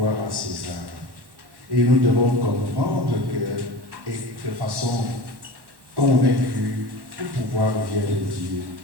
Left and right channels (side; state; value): left; late; 1.1 ms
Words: à César. Et nous devons comprendre que, et de façon convaincue, tout pouvoir vient de Dieu.